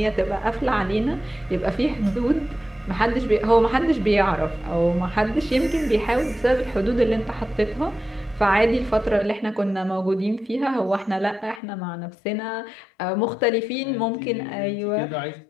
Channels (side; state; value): right; drops out; at 11.6 s